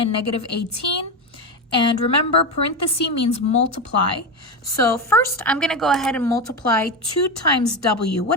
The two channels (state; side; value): normal; both; correlation 0.16